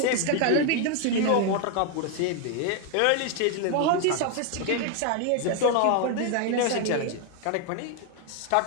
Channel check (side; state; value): both; different; correlation 0.01